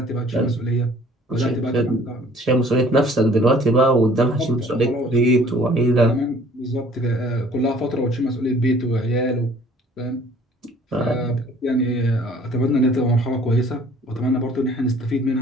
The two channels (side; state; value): both; normal; correlation 0.54